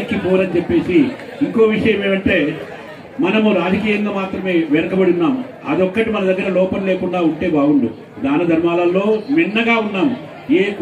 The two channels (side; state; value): both; identical; correlation 1.00